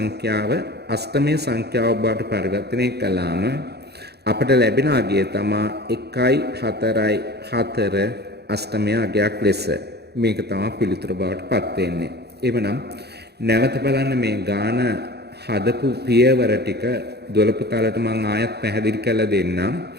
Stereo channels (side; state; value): left; late; 0.48 ms